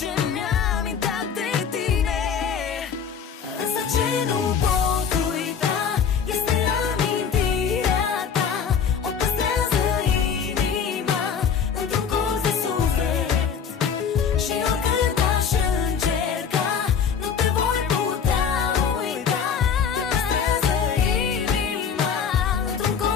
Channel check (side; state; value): right; quieter; 7.0 dB